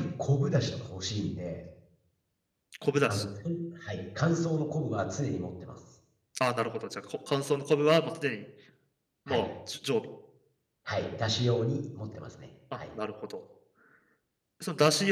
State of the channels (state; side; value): identical; both; correlation 1.00